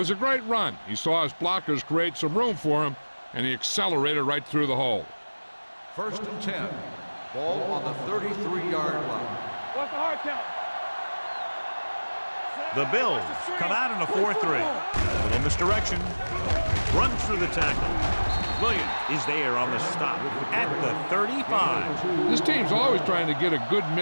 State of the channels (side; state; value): both; inverted; correlation -1.00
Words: a great run. He saw his blockers create some room for him, and he accelerated right through the hole. 1st and 10. Ball on the 33-yard line. What's the hard count? The Bills come out in a 4-3. Little misdirection. Runs through the tackle. Williams is there on the stop at the 35. This team's always trying to get a good